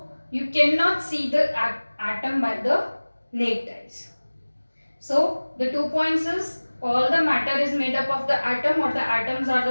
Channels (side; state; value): both; inverted; correlation -1.00